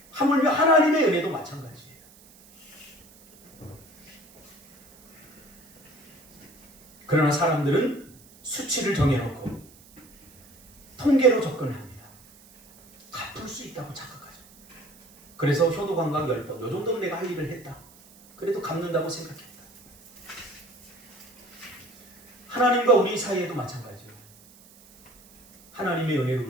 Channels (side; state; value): right; noise; hiss, 26 dB below the sound